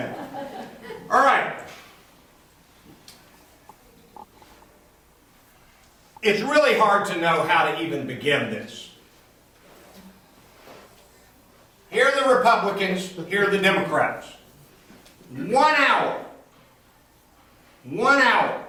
All right. It's really hard to know how to even begin this. Here are the Republicans, here are the Democrats. 1 hour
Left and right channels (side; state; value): both; identical; correlation 1.00